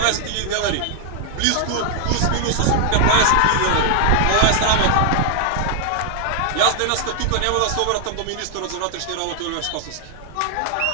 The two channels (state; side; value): different; both; correlation 0.00